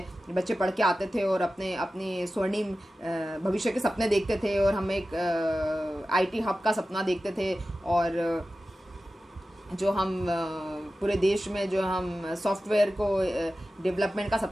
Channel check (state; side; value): normal; both; correlation 0.94